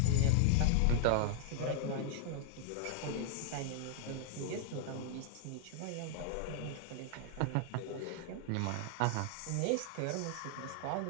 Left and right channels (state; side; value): different; both; correlation 0.00